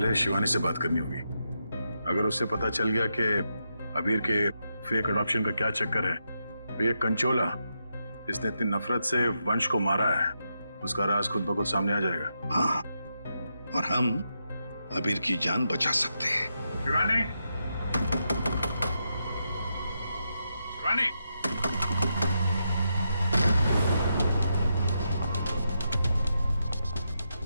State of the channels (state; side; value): inverted; both; correlation -0.84